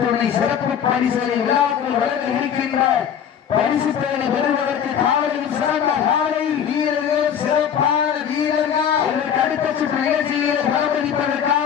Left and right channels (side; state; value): right; quieter; 8.5 dB